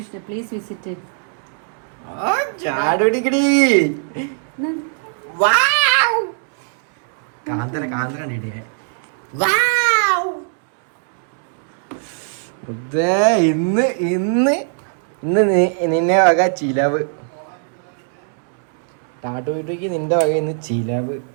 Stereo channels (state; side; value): silent; left; 66 dB below the other